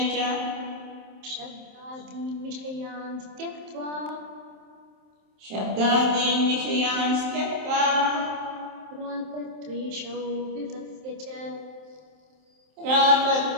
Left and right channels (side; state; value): left; late; 27 ms